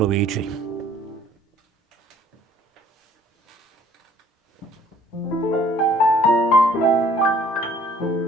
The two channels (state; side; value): normal; both; correlation 0.57